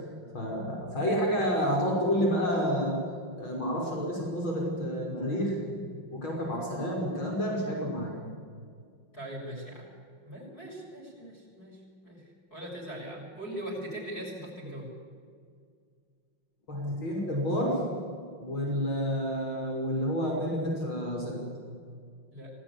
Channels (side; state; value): right; late; 5.6 ms